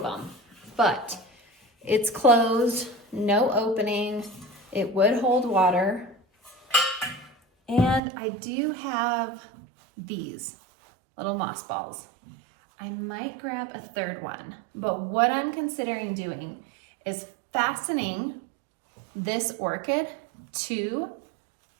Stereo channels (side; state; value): left; drops out; at 8.0 s